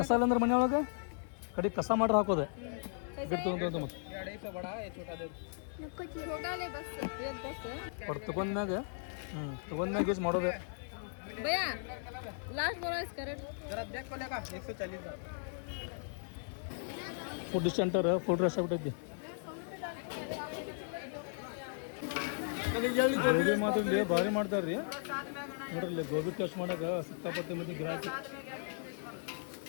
ಇಲ್ಲ ಅಂದ್ರೆ ಮನೆ ಒಳಗೆ ಕಡೆ ಕಸ ಮಾಡ್ರೆ ಹಾಕೋದೆ ಗಿಟ್ಟು ಮತ್ತೆ ತಗೊಂಡ್ಮ್ಯಾಗ ತಗೊಂಡ್ಮ್ಯಾಗ ಯೂಸ್ ಮಾಡೋದೆ. ಫುಡ್ ಸೆಂಟರ್ ಫುಡ್ ರಶ್ ಆಗ್ಬಿಟ್ಟೈತಿ. ಗೋಬಿ ಮಾತ್ರ ಭಾರಿ ಮಾಡ್ತಾರೆ ರೀ ನೋಡ್ರಿ. ಗೋಬಿ ಟೇಸ್ಟ್ ಮಾಡಕ್ಕೆ ಸಿಕ್ಕಾಪಟ್ಟೆ ಮತ್ತೆ ಗಿರಾಕಿ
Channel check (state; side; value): silent; right; digital silence